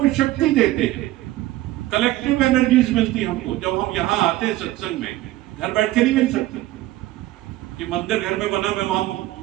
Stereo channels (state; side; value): quieter; left; 16.4 dB